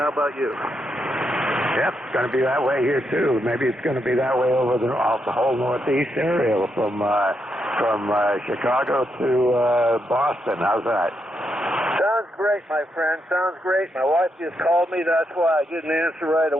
about you? Yep, it's going to be that way here too. Maybe it's going to be that way over the whole northeast area from Chicago to Boston. How's that? Sounds great, my friend. Sounds great. My wife just called me. That's why I didn't answer right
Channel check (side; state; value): both; normal; correlation 0.81